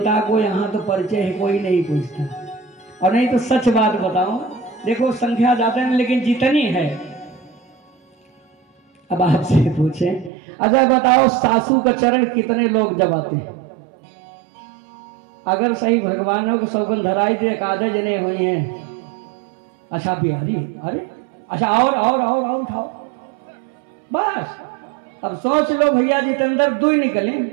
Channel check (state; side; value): drops out; left; at 10.3 s